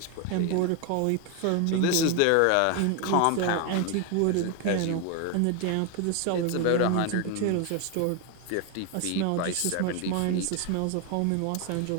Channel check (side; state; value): both; different; correlation 0.01